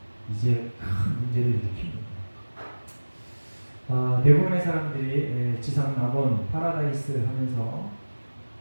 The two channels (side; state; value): both; inverted; correlation -1.00